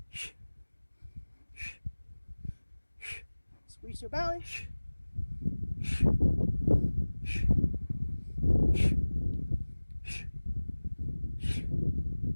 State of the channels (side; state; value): both; inverted; correlation -1.00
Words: Squeeze your belly.